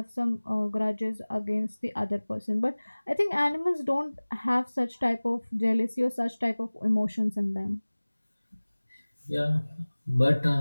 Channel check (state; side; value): inverted; both; correlation -1.00